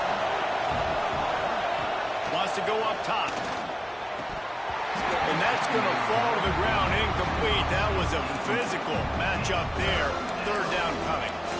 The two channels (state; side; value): identical; both; correlation 1.00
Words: Wants to go up top. And that's going to fall to the ground incomplete. That was a physical matchup there. 3rd down coming.